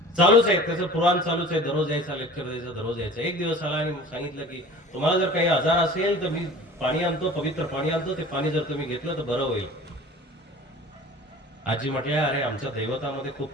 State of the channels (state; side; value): normal; both; correlation 0.42